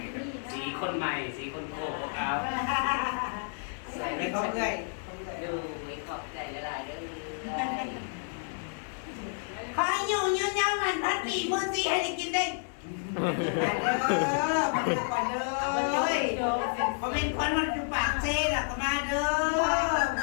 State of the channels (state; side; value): silent; right; digital silence